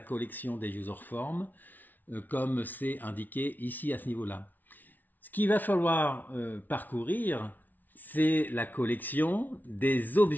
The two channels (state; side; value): late; right; 0.083 ms